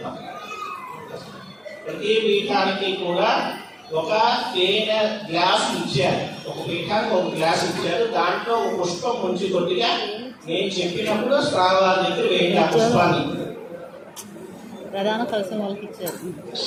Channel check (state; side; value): identical; both; correlation 1.00